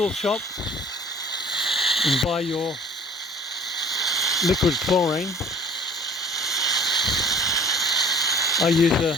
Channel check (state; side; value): normal; both; correlation 0.48